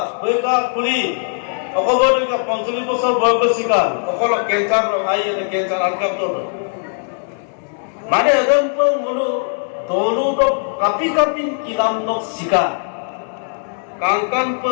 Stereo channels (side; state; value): right; silent; digital silence